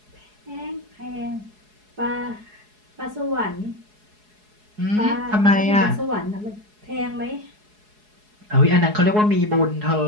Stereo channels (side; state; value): left; late; 4.7 ms